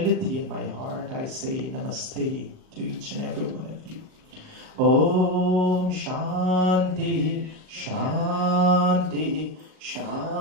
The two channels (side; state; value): left; late; 38 ms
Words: in my heart, I say namaste to each and every one of you. Om Shanti, Shanti,